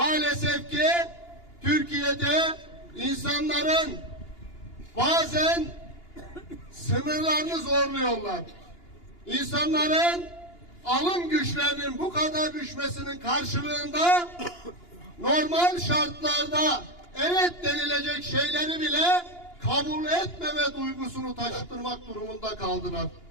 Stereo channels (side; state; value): right; late; 2.9 ms